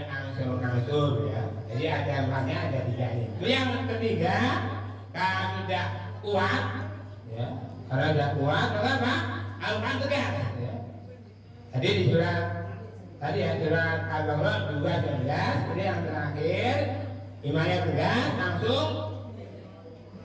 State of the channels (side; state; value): both; identical; correlation 1.00